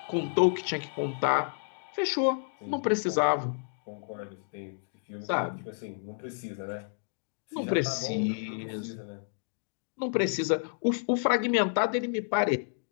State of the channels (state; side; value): silent; right; digital silence